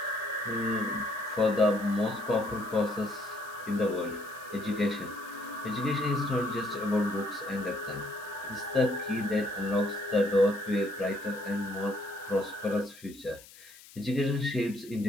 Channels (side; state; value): left; noise; hiss, 20 dB below the sound